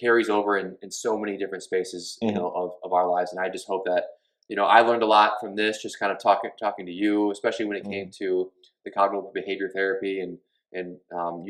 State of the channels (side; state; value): both; identical; correlation 1.00